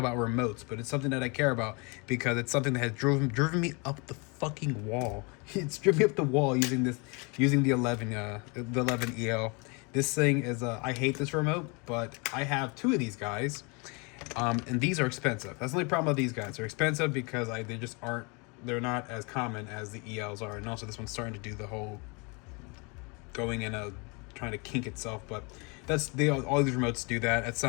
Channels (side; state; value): right; quieter; 30.7 dB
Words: remotes, but it's something that I care about because it's something that has driven me up the fucking wall. It's driven me up the wall using the 11EL. This thing is I hate this remote, but I have two of these guys, and these are expensive. That's the only problem with these guys. They're expensive because they just aren't. They're not as common as the ELs are, and also this one's starting to do the whole going in a trying to kink itself, but all these remotes do that. At